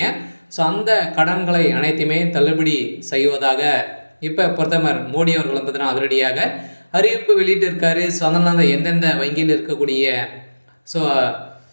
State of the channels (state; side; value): inverted; both; correlation -1.00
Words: ஸோ அந்த கடன்களை அனைத்துமே தள்ளுபடி செய்வதாக இப்ப பிரதமர் மோடி அவர்கள் வந்து பார்த்தீங்கன்னா, அதிரடியாக அறிவிப்பு வெளியிட்டிருக்காரு. ஸோ அதனால எந்தெந்த வங்கியில் இருக்கக்கூடிய ஸோ